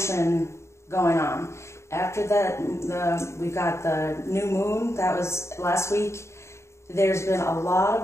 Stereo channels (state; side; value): late; right; 0.13 ms